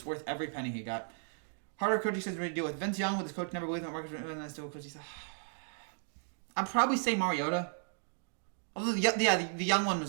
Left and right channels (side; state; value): left; silent; digital silence